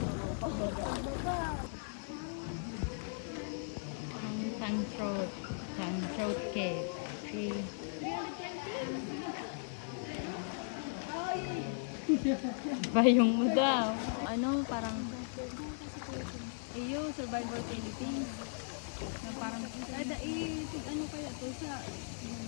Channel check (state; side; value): silent; right; digital silence